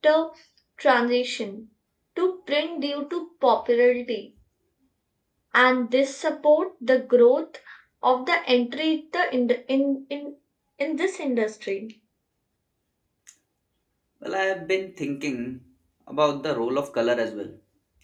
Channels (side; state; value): both; identical; correlation 1.00